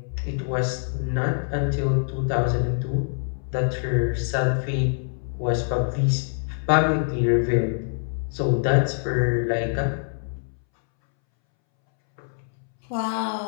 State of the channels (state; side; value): silent; right; 62 dB below the other